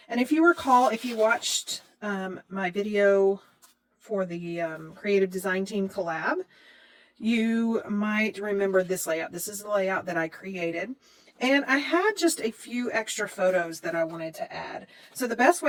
And if you recall, if you watched my video for the Creative Design Team collab, you might remember this layout. This is the layout that I created. And I had just a few extra photos that I wanted to add. So the best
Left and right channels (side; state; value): both; identical; correlation 1.00